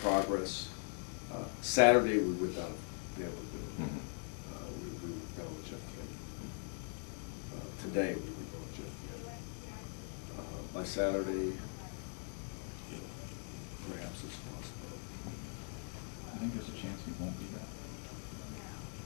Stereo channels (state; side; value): silent; right; 50 dB below the other